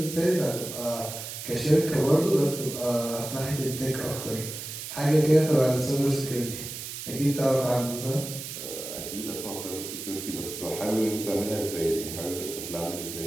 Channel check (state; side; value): noise; right; hiss, 8 dB below the sound